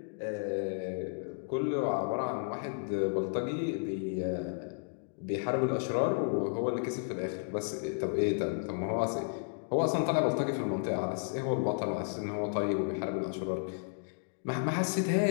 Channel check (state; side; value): silent; right; digital silence